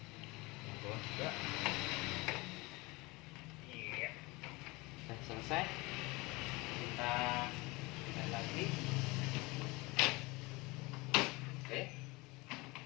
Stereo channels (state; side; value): quieter; right; 23.9 dB